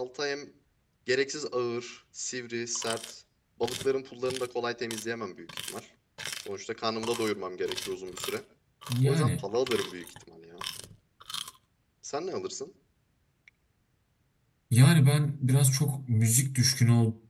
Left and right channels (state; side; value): identical; both; correlation 1.00